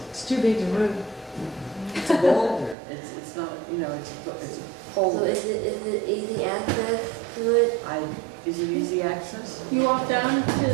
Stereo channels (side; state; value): left; drops out; at 2.8 s